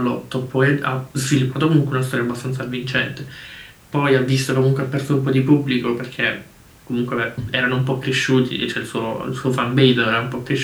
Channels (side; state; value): both; identical; correlation 1.00